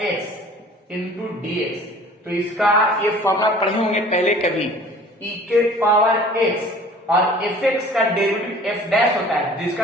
x into dx, तो इसका ये फॉर्मूला पढ़े होंगे पहले कभी, e के पावर x और fx का डेरिवेटिव f डैश होता है,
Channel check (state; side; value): normal; both; correlation 0.48